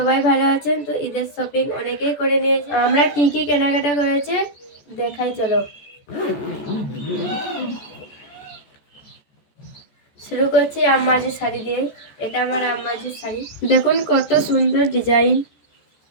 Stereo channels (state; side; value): late; right; 14 ms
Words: ভালো আছেন। তো ঈদের শপিং অনেকেই করে নিয়েছে। আমরা কি কি কেনাকাটা করেছে দেখাই, চলো শুরু করছি আম্মাজির শাড়ি দিয়ে। এটা আমার আম্মাজির শাড়ি, দেখুন কত সুন্দর ডিজাইন।